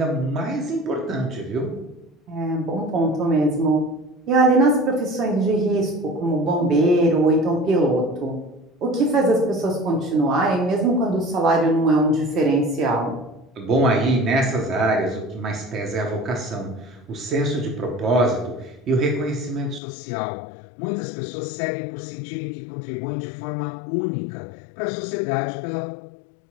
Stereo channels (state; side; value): drops out; right; at 19.8 s